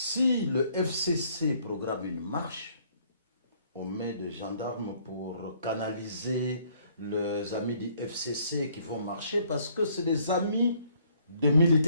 le FCC programme une marche, on met des gendarmes pour canaliser les amis du FCC qui vont marcher parce que c'est des amis de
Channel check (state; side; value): inverted; both; correlation -0.64